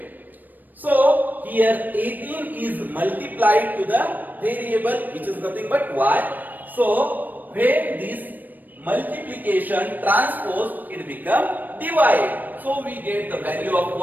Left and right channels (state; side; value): late; left; 0.088 ms